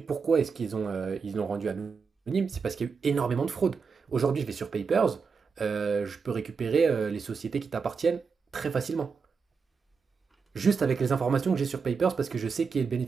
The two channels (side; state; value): left; quieter; 5.4 dB